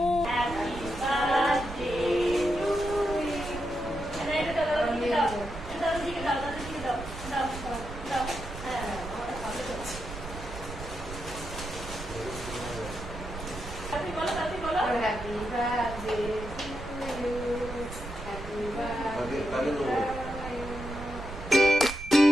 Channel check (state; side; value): noise; right; rumble, 10 dB below the sound